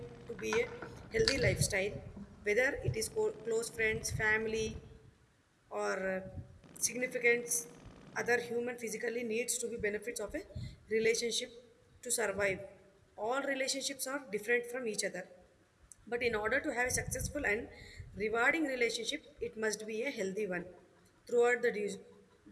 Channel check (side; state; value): both; identical; correlation 1.00